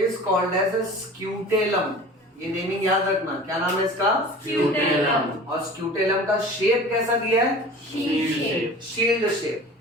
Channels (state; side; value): normal; both; correlation 0.40